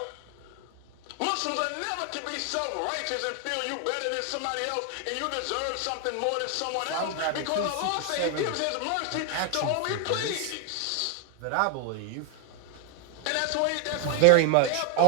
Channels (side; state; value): both; different; correlation 0.00